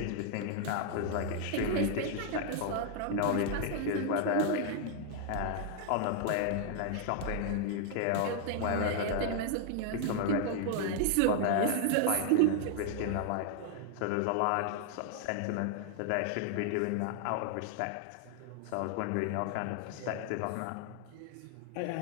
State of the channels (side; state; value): both; different; correlation 0.00